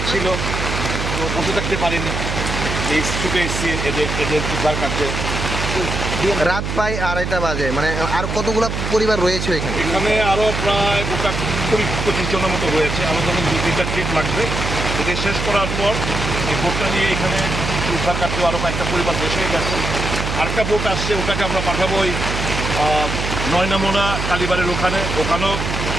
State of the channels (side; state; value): right; noise; hum, 3 dB below the sound